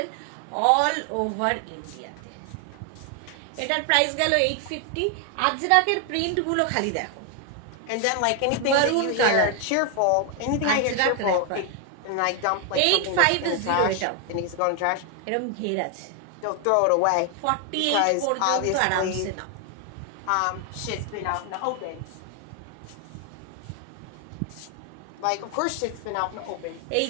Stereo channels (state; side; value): different; both; correlation 0.01